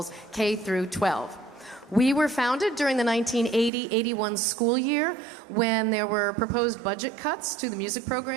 K through 12. We were founded during the 1980-81 school year when there were proposed budget cuts to the music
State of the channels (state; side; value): drops out; left; at 3.7 s